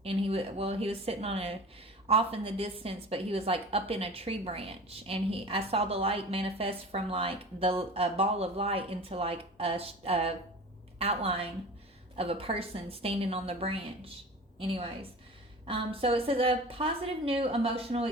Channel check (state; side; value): normal; both; correlation 0.37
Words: And he was sitting off in the distance, but he was like up in a tree branch, and I saw the light manifest from like a ball of light into like a outline of a person standing on the branch. Anyways, so it says a positive new emotional